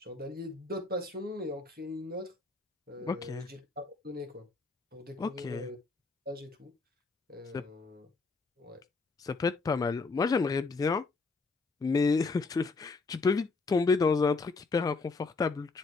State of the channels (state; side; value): quieter; right; 4.0 dB